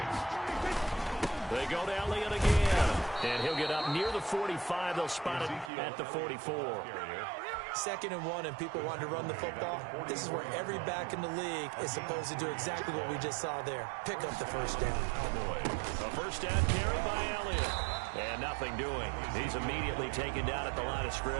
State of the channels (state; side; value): drops out; left; at 5.7 s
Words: They go to Elliott again. And he'll get up near the 45. They'll spot it at the 44. 2nd and 1, and people want to run the football. This is where every back in the league is supposed to do exactly what we just saw there. Pick up the 1st down. A 1st down carry by Elliott. And nothing doing. He's immediately taken down at the line of